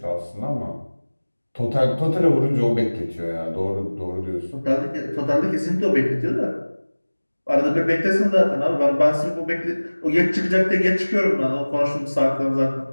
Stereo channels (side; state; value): both; inverted; correlation -1.00